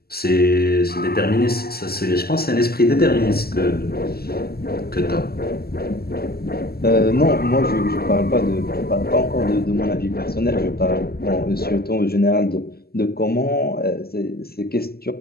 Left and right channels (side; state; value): right; late; 0.45 ms